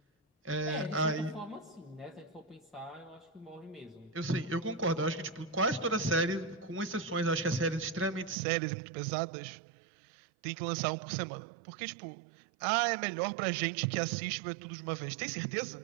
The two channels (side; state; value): left; drops out; at 8.3 s